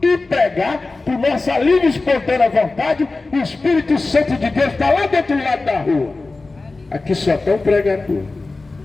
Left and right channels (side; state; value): right; quieter; 3.5 dB